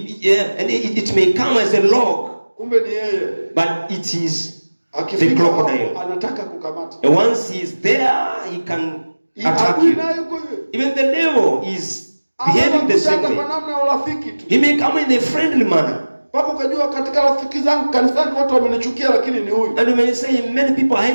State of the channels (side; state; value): both; inverted; correlation -1.00